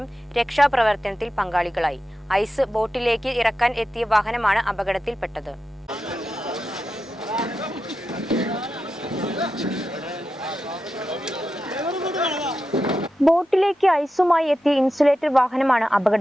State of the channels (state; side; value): normal; both; correlation 0.90